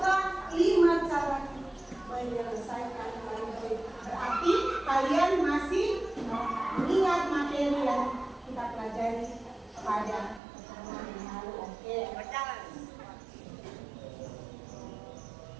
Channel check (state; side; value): drops out; left; at 10.4 s